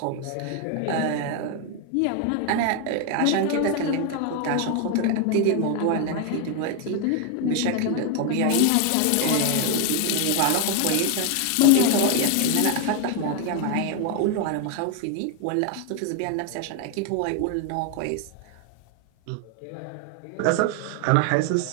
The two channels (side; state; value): both; different; correlation 0.01